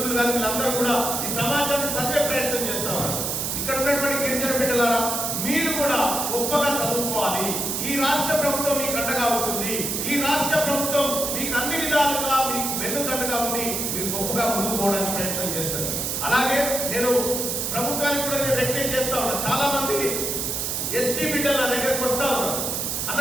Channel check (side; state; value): right; noise; hiss, 1 dB below the sound